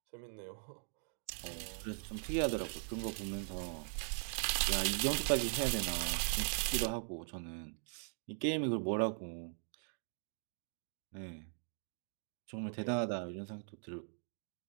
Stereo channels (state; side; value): silent; left; digital silence